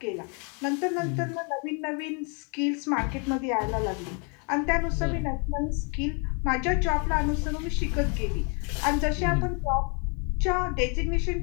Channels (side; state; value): right; quieter; 36.0 dB